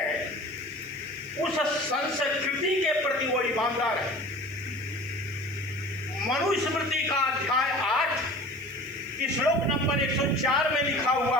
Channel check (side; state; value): left; noise; hiss, 26 dB below the sound